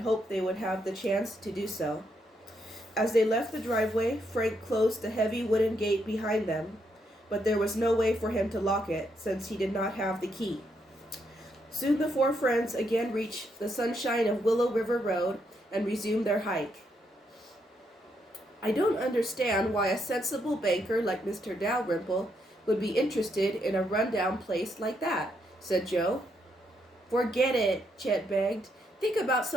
hoped they would have the chance to do so. As they left the driveway, Frank closed the heavy wooden gate behind them, but there was no way for him to lock it since he did not have the key. Soon the four friends again reached the sunshine of Willow River Road and resumed their hike. I don't understand why a sensible banker like Mr. Dalrymple would be interested in a run-down place like that, said Joe. Forget it, Chet begged. Think about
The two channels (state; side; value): normal; both; correlation 0.77